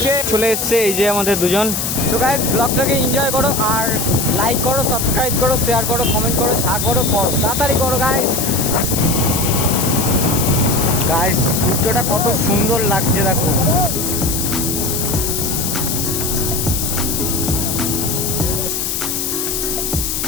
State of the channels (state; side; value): noise; left; hiss, 1 dB below the sound